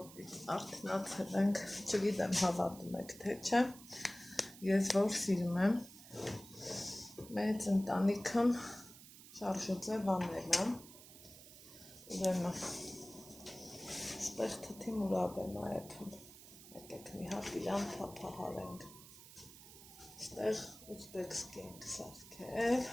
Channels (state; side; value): noise; right; hiss, 18 dB below the sound